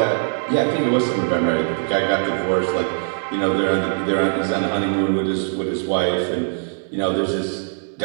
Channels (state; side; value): silent; left; digital silence